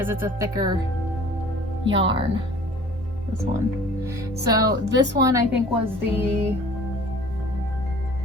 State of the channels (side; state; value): both; normal; correlation 0.48